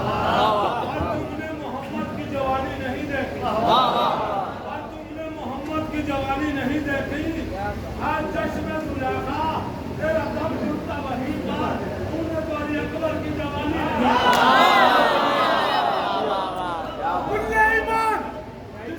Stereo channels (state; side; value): identical; both; correlation 1.00